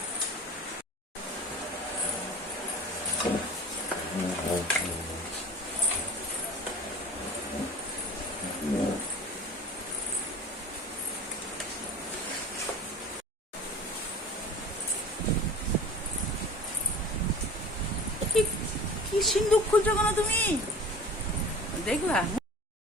কি সিন্দুক খুলছো কেন তুমি? দেখলা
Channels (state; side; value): normal; both; correlation 0.39